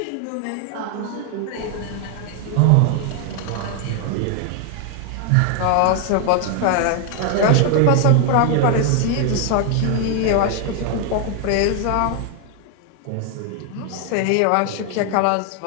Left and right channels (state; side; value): different; both; correlation 0.01